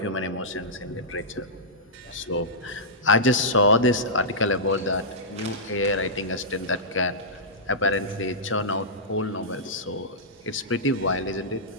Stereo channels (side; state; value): both; normal; correlation -0.14